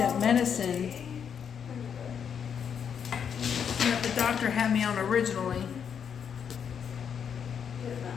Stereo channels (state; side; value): quieter; right; 7.6 dB